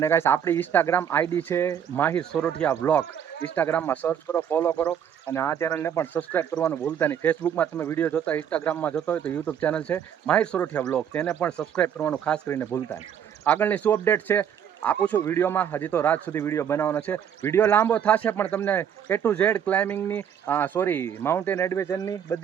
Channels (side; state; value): left; quieter; 8.8 dB